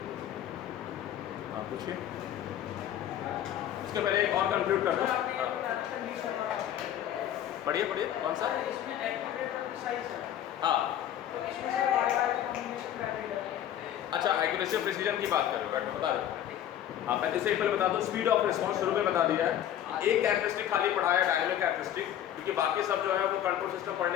हाँ पूछिए। उसके पहले एक और कंक्लूड कर दो। पढ़िए पढ़िए, कौन सा? हाँ अच्छा, एक्यूरेसी और प्रिसीजन की बात कर रहे हो, बैठो बता दो। हाँ पहले से एक पहले बता दो, स्पीड ऑफ रिस्पॉन्स शुरू में बता दिया है। एक कैरेक्टरिस्टिक खाली पढ़ाया, डायनेमिक कैरेक्टरिस्टिक, क्योंकि बाकी सब जो है वो कंट्रोल सिस्टम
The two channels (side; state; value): right; quieter; 11.1 dB